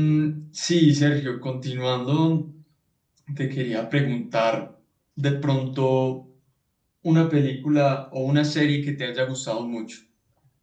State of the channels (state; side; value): identical; both; correlation 1.00